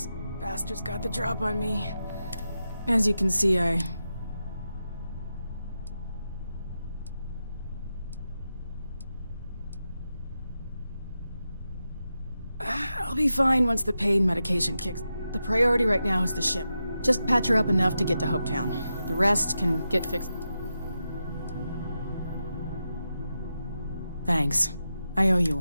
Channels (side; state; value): both; inverted; correlation -0.89